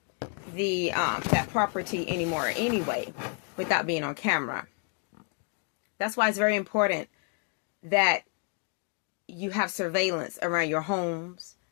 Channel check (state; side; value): quieter; right; 38.2 dB